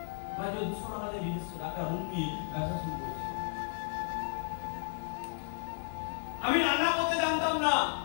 আমি 200 টাকা দিয়ে বিজনেস একটা রুম নিয়ে ব্যবসা শুরু করেছি। আমি রান্না করতে জানতাম না,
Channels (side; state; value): right; silent; digital silence